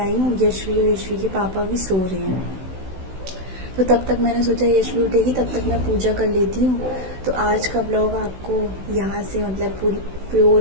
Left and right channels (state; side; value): late; left; 16 ms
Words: हूँ। यशवी और यशवी के पापा भी सो रहे हैं, तो तब तक मैंने सोचा यशवी उठेगी तब तक मैं पूजा कर लेती हूँ। तो आज का ब्लॉग आपको यहाँ से मतलब पूरी प्योर